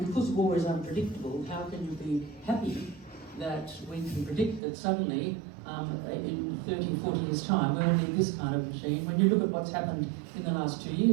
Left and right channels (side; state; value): left; drops out; at 4.6 s